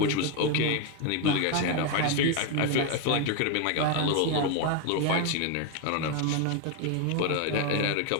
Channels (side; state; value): both; different; correlation 0.01